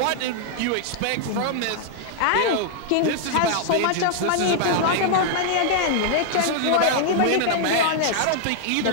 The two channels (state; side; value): different; both; correlation -0.01